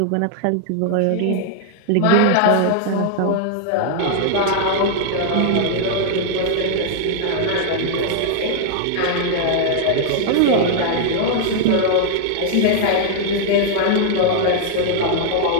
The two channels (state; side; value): different; both; correlation -0.01